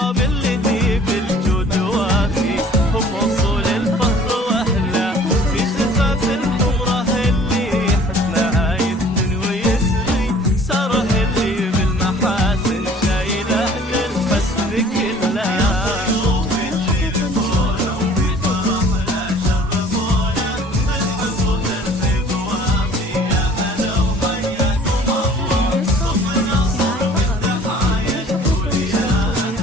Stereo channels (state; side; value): normal; both; correlation 0.52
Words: اللي ذي بالجود وافيهم وصول الفخر.